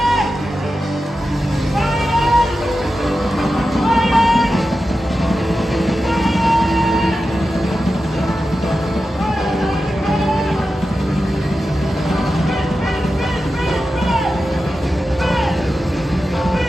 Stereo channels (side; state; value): both; normal; correlation 0.92